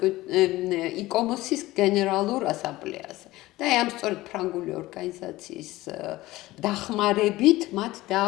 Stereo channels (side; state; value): right; quieter; 18.0 dB